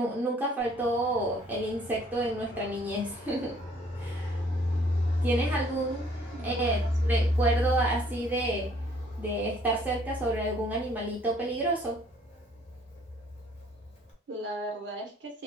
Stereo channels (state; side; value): normal; both; correlation 0.60